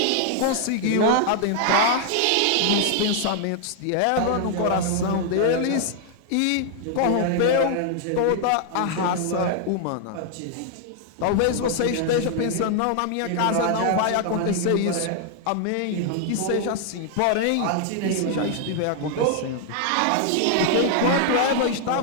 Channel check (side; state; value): both; different; correlation 0.00